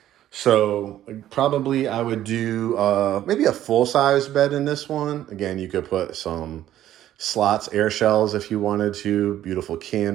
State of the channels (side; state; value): left; quieter; 12.5 dB